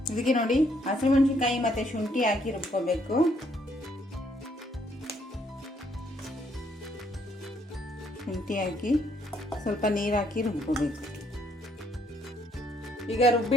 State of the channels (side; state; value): both; normal; correlation 0.69